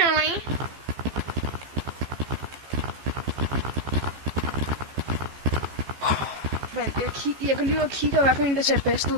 Jeg går lige ud og kigger, hvad for en, der ser bedst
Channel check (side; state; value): left; late; 15 ms